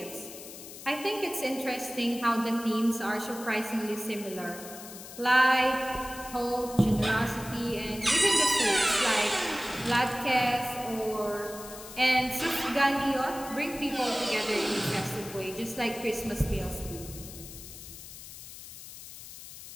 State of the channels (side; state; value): left; noise; hiss, 14 dB below the sound